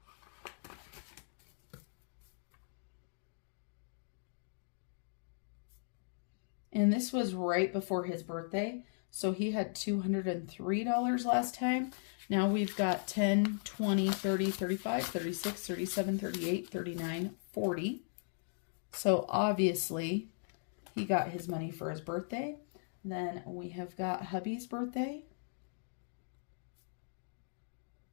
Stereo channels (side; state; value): right; silent; digital silence